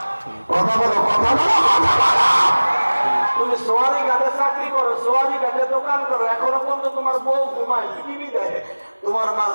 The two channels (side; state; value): both; inverted; correlation -1.00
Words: কথা বলো, কথা বলো, কথা বলো। তুমি সোয়ারি ঘাটে চাকরি করো, সোয়ারি ঘাটে দোকান করো, এখনো পর্যন্ত তোমার বউ ঘুমায়, টিভি দেয়, তোমার মা